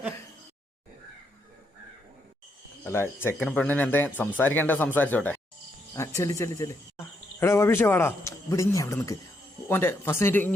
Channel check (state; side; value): normal; both; correlation 0.78